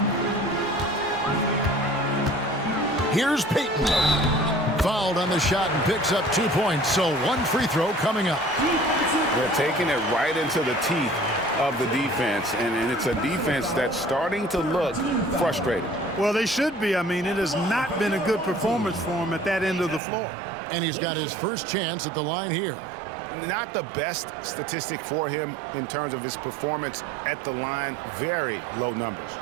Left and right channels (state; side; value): drops out; left; at 20.0 s